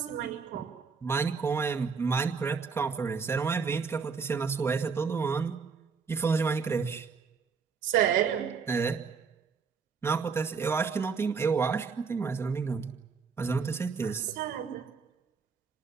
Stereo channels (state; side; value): quieter; left; 5.5 dB